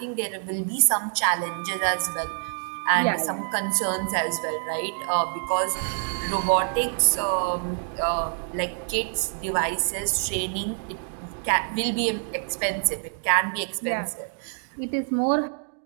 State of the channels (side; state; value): left; silent; 61 dB below the other